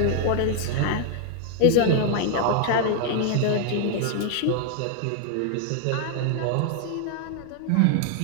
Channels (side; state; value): both; different; correlation 0.00